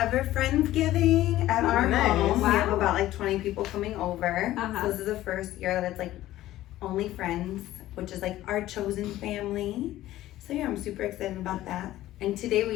Friendsgiving at our nice. home. We have Wow. about like 20 people coming over. Uh-huh. So this is the first year that it's like only friends, which is like our chosen family. So yeah, I'm super excited about that. And today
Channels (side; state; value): right; quieter; 14.9 dB